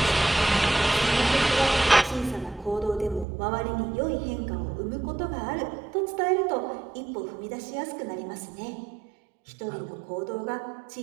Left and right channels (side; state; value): left; drops out; at 3.2 s